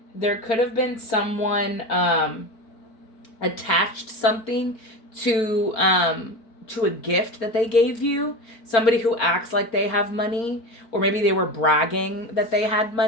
there could have been someone attached something to a gift that they gave you. Somebody who acts like they have money, or maybe they were bragging that they had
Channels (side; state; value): right; late; 4.5 ms